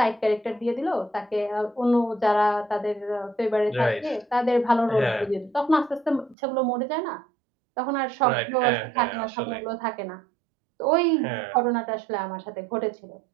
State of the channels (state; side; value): drops out; left; at 6.4 s